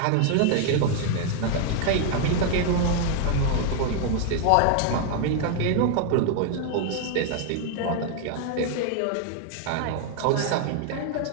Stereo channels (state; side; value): different; both; correlation 0.00